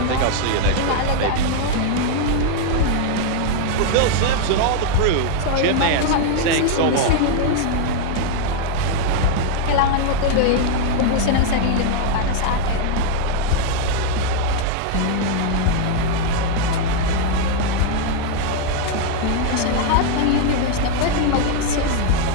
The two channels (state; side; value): different; both; correlation 0.00